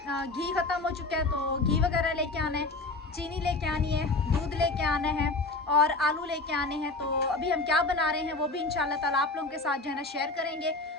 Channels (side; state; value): right; quieter; 3.4 dB